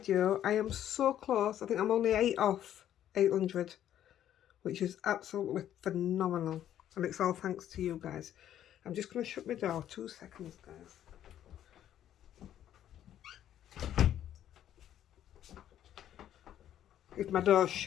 I am so close. I think I'm only 8 off 800. Which is absolutely phenomenal, and it's all thanks to you guys. I'm just going to shut my door 2 seconds, guys. If my door's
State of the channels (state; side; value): quieter; right; 11.1 dB